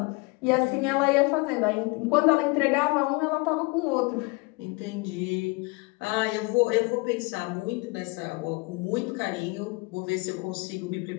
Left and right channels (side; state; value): right; quieter; 27.1 dB